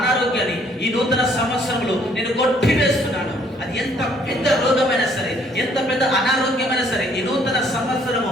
ఈ నూతన సంవత్సరంలో నేను కొట్టివేస్తున్నాను. అది ఎంత పెద్ద రోగమైనా సరే, ఎంత పెద్ద అనారోగ్యమైనా సరే, ఈ నూతన సంవత్సరము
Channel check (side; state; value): both; normal; correlation 0.63